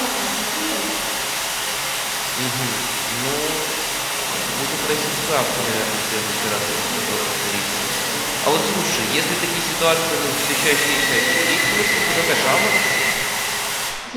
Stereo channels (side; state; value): both; identical; correlation 1.00